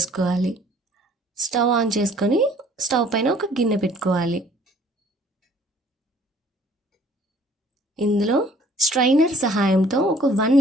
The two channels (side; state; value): both; normal; correlation 0.56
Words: స్టవ్ ఆన్ చేసుకొని స్టవ్ పైన ఒక గిన్నె పెట్టుకోవాలి. ఇందులో స్ట్రైనర్ సహాయంతో ఒక 1